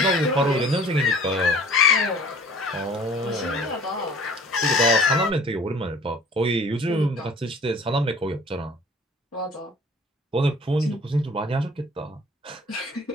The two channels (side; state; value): both; normal; correlation 0.49